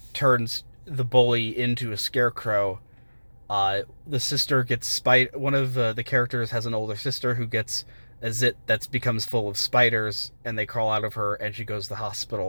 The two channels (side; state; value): both; inverted; correlation -1.00